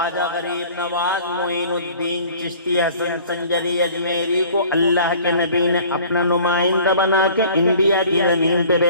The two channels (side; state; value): both; inverted; correlation -0.49